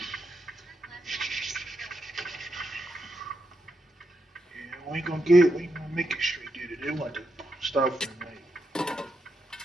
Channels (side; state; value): both; normal; correlation 0.84